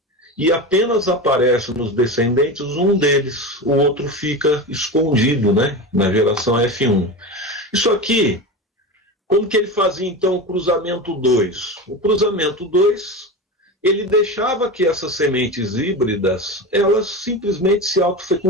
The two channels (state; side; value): normal; both; correlation 0.24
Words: e apenas aparece nos descendentes um deles, o outro fica escondido, né, na geração F1. Isso aqui, como que ele fazia então o cruzamento 2? O cruzamento 2, ele deixava que essas sementes híbridas, elas simplesmente se